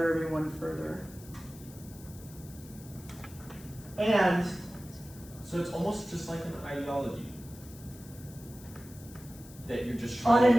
everyone further. And So it's almost just like an ideology that you're just On trying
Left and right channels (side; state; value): left; noise; hiss, 19 dB below the sound